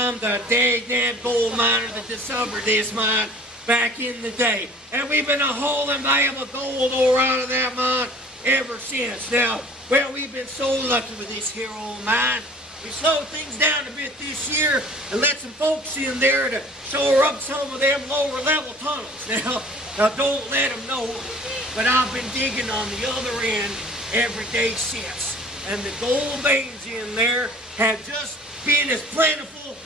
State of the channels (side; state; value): both; normal; correlation 0.48